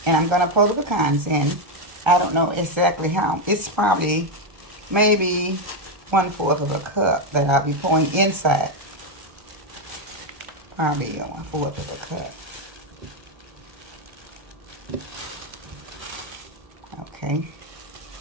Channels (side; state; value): left; late; 1.3 ms